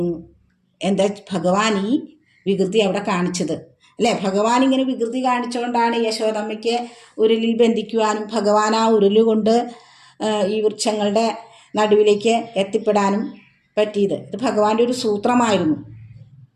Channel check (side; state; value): both; identical; correlation 1.00